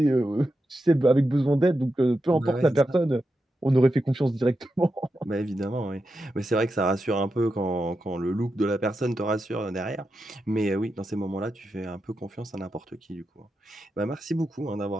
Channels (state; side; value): normal; both; correlation 0.88